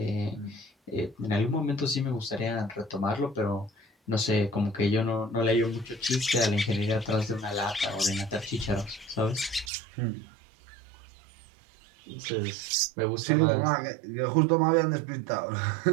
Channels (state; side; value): drops out; left; at 9.7 s